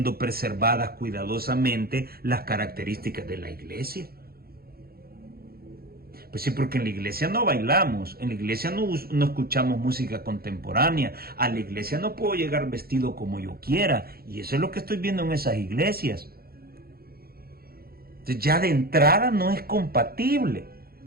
preservadas cuidadosamente las características de la iglesia. Pues sí, porque en la iglesia no bailamos, en la iglesia no escuchamos música contemporánea, a la iglesia no puedo llegar vestido como yo quiera, y eso es lo que estoy viendo en esas iglesias. Entonces ya de entrada no es compatible.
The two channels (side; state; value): left; late; 0.44 ms